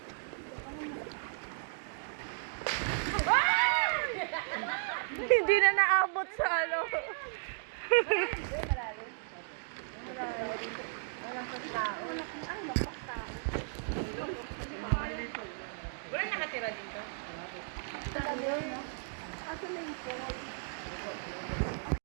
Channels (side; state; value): left; silent; digital silence